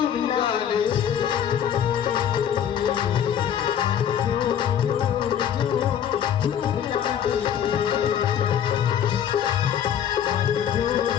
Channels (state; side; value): quieter; right; 9.3 dB